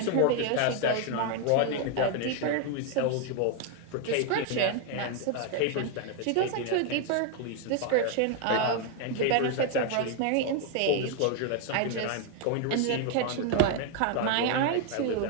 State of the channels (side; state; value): both; different; correlation 0.00